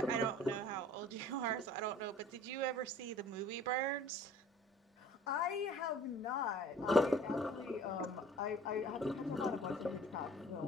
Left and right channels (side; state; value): both; normal; correlation 0.49